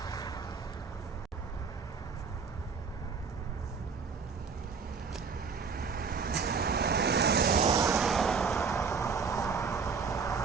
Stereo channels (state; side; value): quieter; left; 5.5 dB